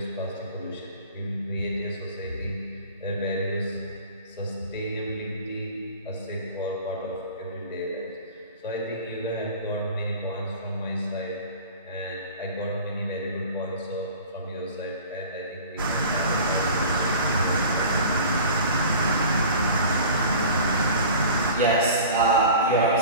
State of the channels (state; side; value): inverted; both; correlation -0.40